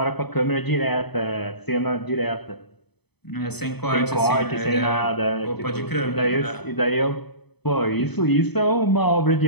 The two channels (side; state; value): right; late; 0.98 ms